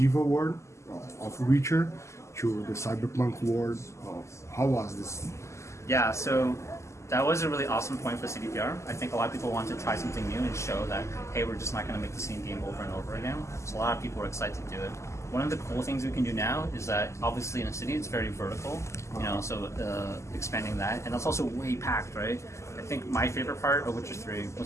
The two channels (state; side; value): late; right; 0.13 ms